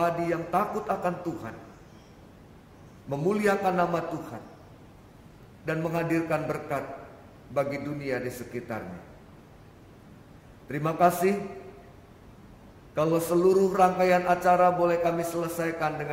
yang takut akan Tuhan, memuliakan nama Tuhan, dan menghadirkan berkat bagi dunia di sekitarnya. Terima kasih kalau seluruh rangkaian acara boleh kami selesaikan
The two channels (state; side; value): identical; both; correlation 1.00